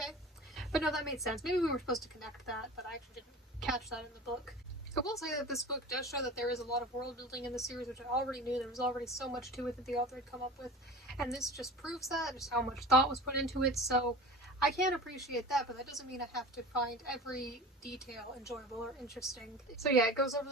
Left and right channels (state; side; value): normal; both; correlation 0.36